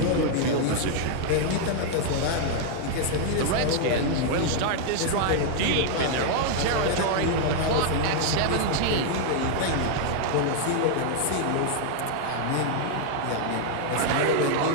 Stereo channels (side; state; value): both; different; correlation 0.00